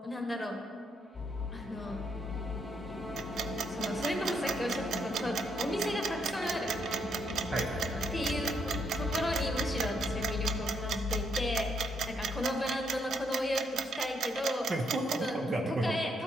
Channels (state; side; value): normal; both; correlation 0.74